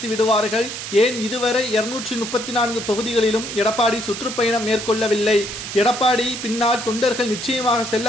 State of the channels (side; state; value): right; noise; hiss, 8 dB below the sound